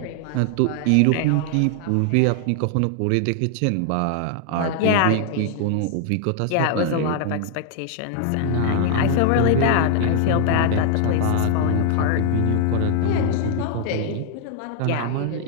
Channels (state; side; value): different; both; correlation 0.00